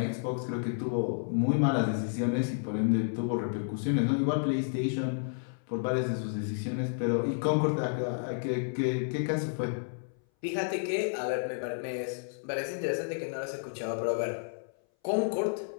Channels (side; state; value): right; silent; 57 dB below the other